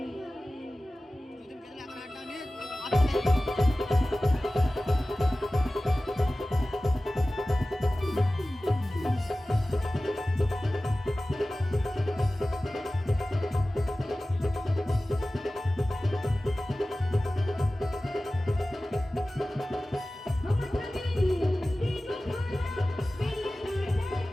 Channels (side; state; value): both; normal; correlation 0.97